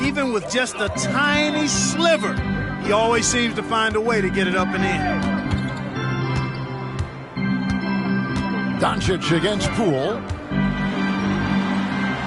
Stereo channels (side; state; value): both; identical; correlation 1.00